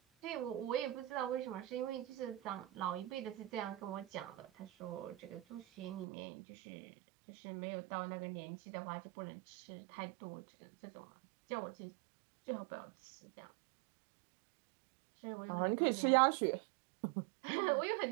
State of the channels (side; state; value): left; drops out; at 6.1 s